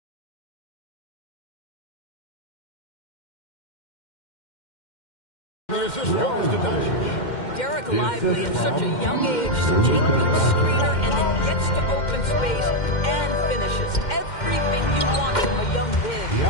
There's this goes to Doncic. Derek Lively at such a young age, such a good screener, and then gets to open space and finishes. Everything you want from a young big.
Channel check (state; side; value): late; right; 2.1 ms